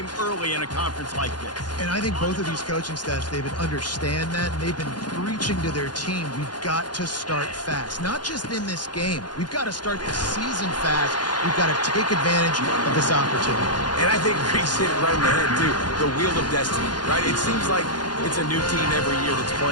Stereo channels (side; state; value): right; late; 0.70 ms